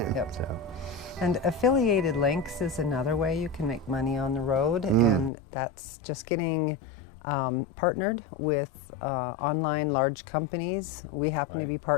Yep. So, And affiliated links is another way you can make money on the road, and that's just getting partnered with online large companies. We happen to Right. be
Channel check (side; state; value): right; drops out; at 5.3 s